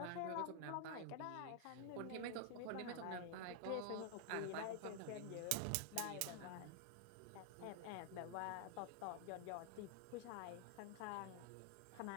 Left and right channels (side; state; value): both; different; correlation 0.00